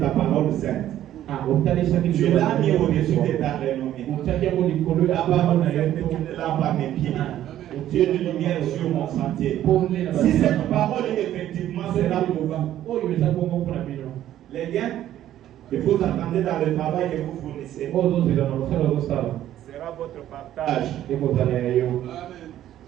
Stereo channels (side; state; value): left; quieter; 12.3 dB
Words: parole sainte. Tu l'as mis au-dessus de ta renommée. La parole sainte est une lampe à mes pieds. Tu es une lumière sur mon sentier. Si cette parole effectivement sera pour vous, les gains que vous entendez dans le travail que vous fournissez sera votre partage.